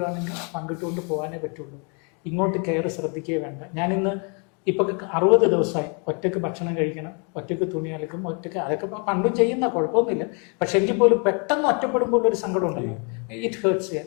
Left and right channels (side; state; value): right; quieter; 36.2 dB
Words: പങ്കിട്ടുകൊണ്ട് പോകാനേ പറ്റുള്ളൂ. ഇങ്ങോട്ട് കെയർ ശ്രദ്ധിക്കുകയേ വേണ്ട. ഞാനിന്ന് ഇപ്പം 60 ദിവസമായി ഒറ്റയ്ക്ക് ഭക്ഷണം കഴിക്കണം, ഒറ്റയ്ക്ക് തുണി അലക്കും, ഒറ്റയ്ക്ക്, അതൊക്കെ പണ്ടും ചെയ്യുന്ന കുഴപ്പമൊന്നുമില്ല. പക്ഷെ എങ്കിൽ പോലും പെട്ടെന്ന് ഒറ്റപ്പെടുമ്പോൾ ഒരു സങ്കടം ഉണ്ടല്ലോ. ഇറ്റ്